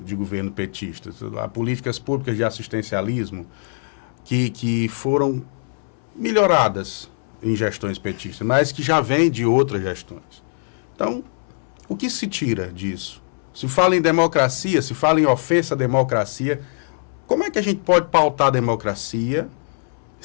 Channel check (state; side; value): silent; right; 64 dB below the other